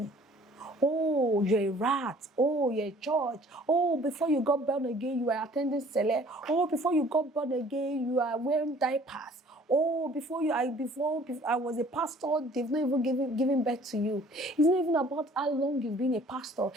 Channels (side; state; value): both; normal; correlation 0.53